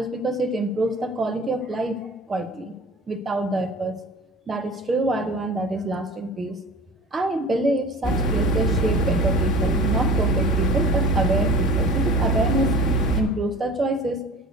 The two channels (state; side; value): normal; both; correlation 0.40